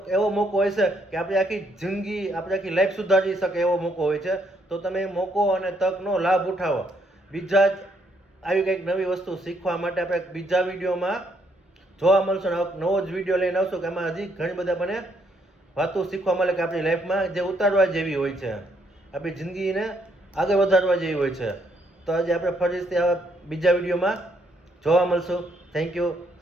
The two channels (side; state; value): both; normal; correlation 0.72